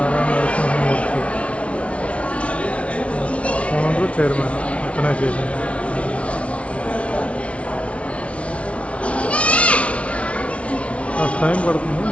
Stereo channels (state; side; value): late; right; 0.062 ms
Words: నరసింహమూర్తి ఓనరు చైర్మన్ అతనే చేసింది. ఫస్ట్ టైం పడుతుంది.